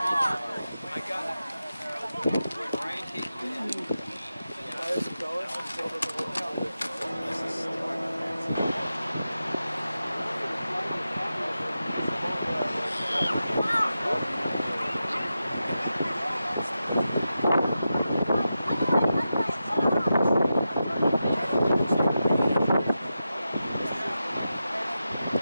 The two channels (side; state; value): both; inverted; correlation -0.90